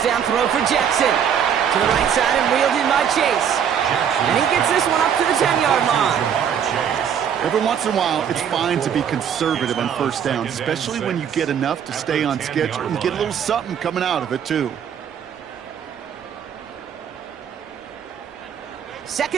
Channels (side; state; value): left; quieter; 8.3 dB